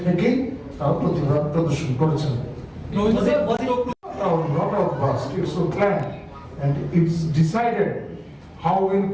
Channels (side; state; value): both; identical; correlation 1.00